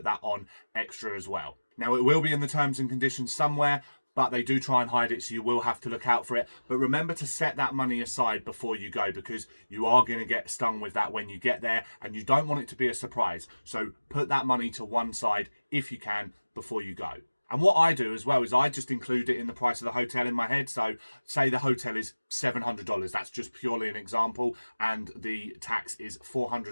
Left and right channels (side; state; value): both; inverted; correlation -1.00